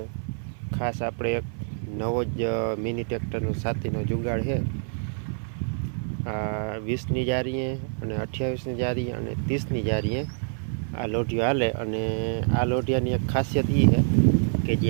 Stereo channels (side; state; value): left; silent; 55 dB below the other